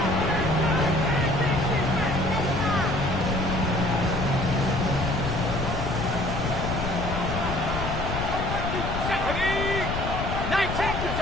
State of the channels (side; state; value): left; noise; rumble, 3 dB below the sound